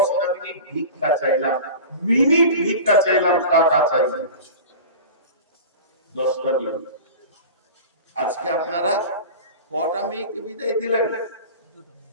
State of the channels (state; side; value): inverted; both; correlation -0.34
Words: মিনিট ভিক্ষা চাইলাম, ভিক্ষা চাইলাম, টাকা চাইলাম, 10টা মিনিট। আজকে আপনারা কটা মেয়েকে বিদায় দিলেন?